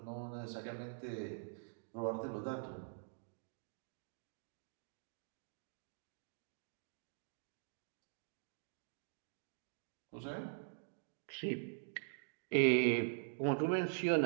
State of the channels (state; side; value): silent; left; digital silence